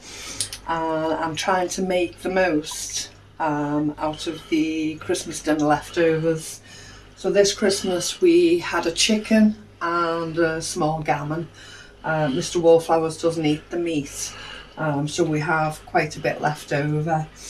and I'm trying to make the most out of the Christmas dinner leftovers. So this Christmas we had a chicken and a small gammon. Mr. Wallflowers doesn't eat the meat, so we have quite a bit left over.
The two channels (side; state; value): both; identical; correlation 1.00